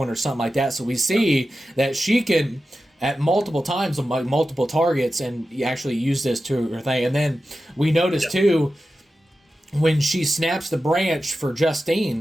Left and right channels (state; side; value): normal; both; correlation 0.93